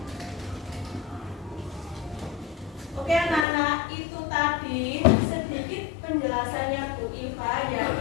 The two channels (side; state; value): right; drops out; at 3.5 s